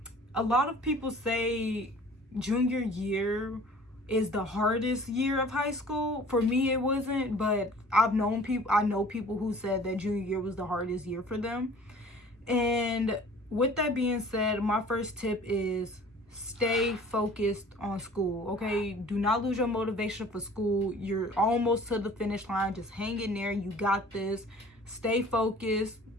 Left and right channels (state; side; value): normal; both; correlation 0.48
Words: lot of people say junior year is the hardest year of high school. For me, it wasn't, but I know people who said that junior year was the hardest year for them. And with that being said, my first tip is stay focused on school, okay? Do not lose your motivation for school. You're almost to the finish line. Just hang in there. You got this. Stay focused.